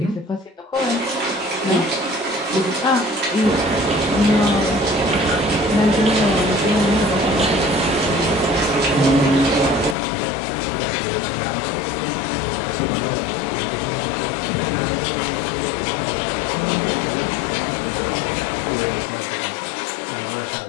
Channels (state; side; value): drops out; right; at 10.0 s